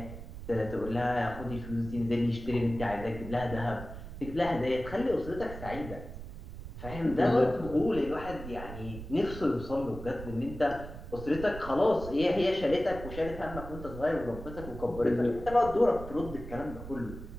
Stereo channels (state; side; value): noise; right; rumble, 11 dB below the sound